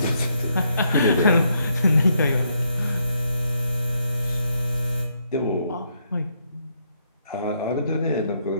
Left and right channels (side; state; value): both; inverted; correlation -0.75